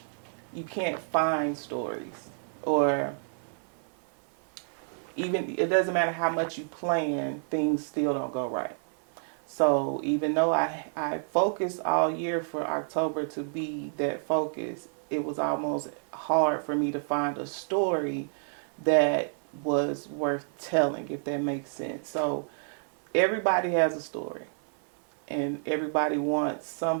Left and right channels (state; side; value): silent; left; 57 dB below the other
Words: you can't find stories, or even it doesn't matter how much you plan, things still don't go right. So even though I focused all year for October to be that focus, it was almost hard for me to find a story that was worth telling, if that makes sense. So everybody has a story, and everybody wants